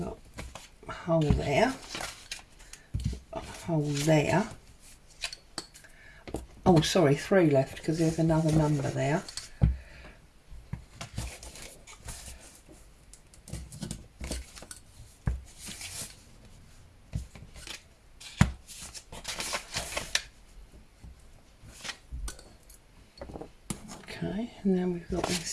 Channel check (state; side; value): identical; both; correlation 1.00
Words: got a hole there. A hole there. Oh, sorry, 3 left because there's another number there. Okay, and then we've got